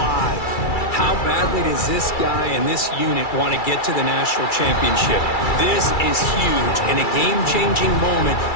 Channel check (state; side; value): late; right; 2.3 ms